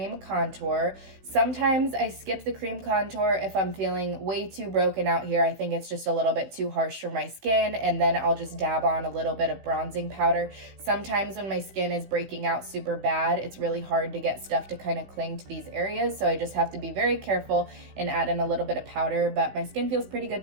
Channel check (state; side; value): late; left; 16 ms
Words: contour. Sometimes I skip the cream contour if I'm feeling way too broken out here. I think it's just a little bit too harsh for my skin, and then I'll just dab on a little bit of bronzing powder. Sometimes when my skin is breaking out super bad, it's really hard to get stuff to kind of cling to these areas, so I just have to be very careful and add in a little bit of powder, but my skin feels pretty good